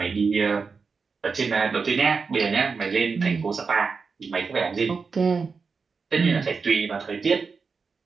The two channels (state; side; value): quieter; left; 5.0 dB